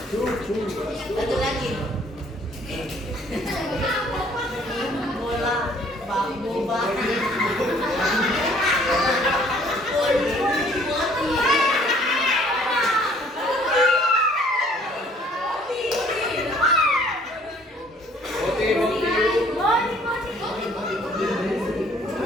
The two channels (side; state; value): both; normal; correlation 0.59